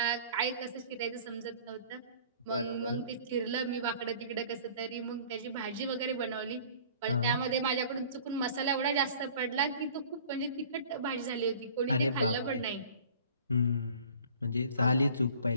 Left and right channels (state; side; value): inverted; both; correlation -0.48